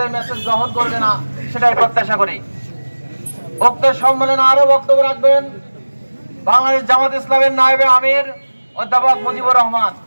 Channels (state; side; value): inverted; both; correlation -1.00